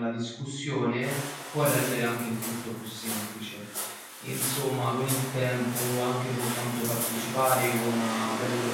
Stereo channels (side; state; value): both; identical; correlation 1.00